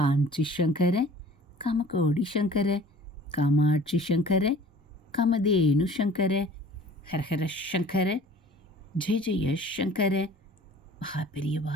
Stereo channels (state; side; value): normal; both; correlation 0.47